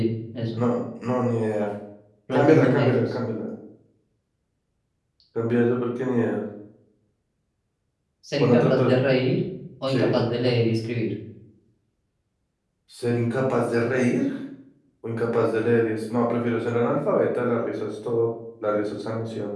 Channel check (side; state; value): both; identical; correlation 1.00